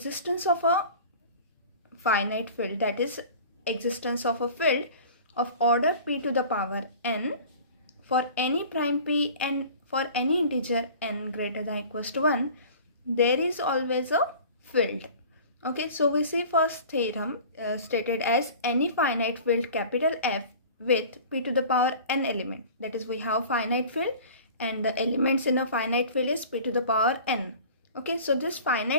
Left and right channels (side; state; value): both; inverted; correlation -0.42